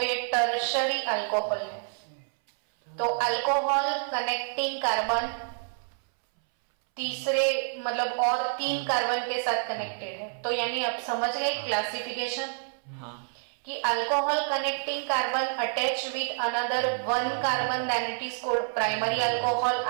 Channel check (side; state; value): left; silent; 59 dB below the other